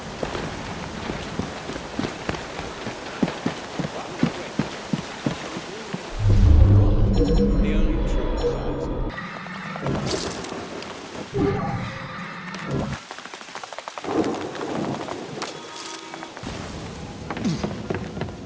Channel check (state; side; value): identical; both; correlation 1.00